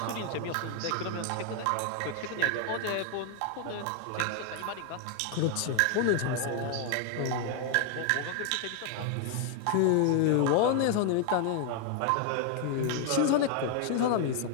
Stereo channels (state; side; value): different; both; correlation 0.00